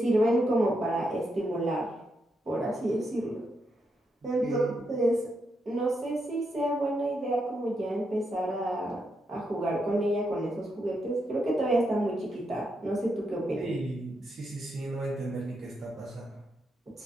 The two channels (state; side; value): normal; both; correlation 0.82